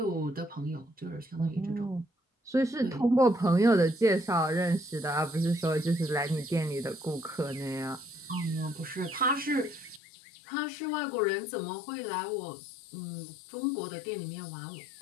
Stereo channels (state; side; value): drops out; right; at 10.0 s